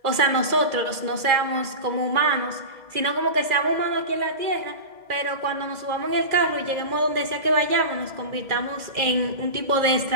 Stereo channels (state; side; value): late; left; 2.0 ms